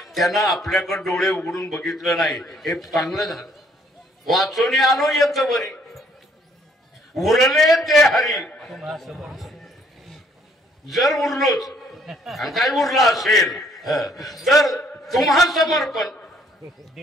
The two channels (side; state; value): both; normal; correlation 0.64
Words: त्यानं आपल्याकडे डोळे उघडून बघितलं नाही, हे चांगलं झालं. वाचोनी आलो येत बरी, उरले ते हरी. जर उरलोच आणि काय उरलं असेल तर तुम्हा समर्पण.